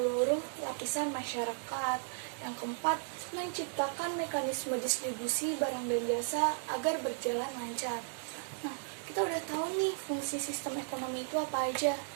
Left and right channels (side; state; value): left; silent; 54 dB below the other